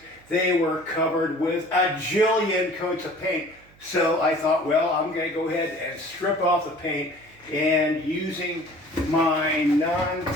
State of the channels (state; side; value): noise; right; hum, 28 dB below the sound